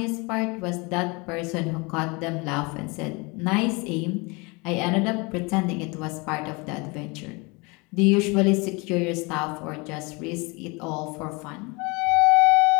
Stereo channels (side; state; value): right; quieter; 27.9 dB